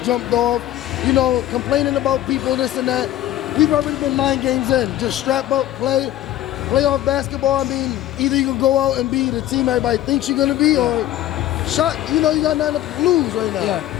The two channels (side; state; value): right; quieter; 13.5 dB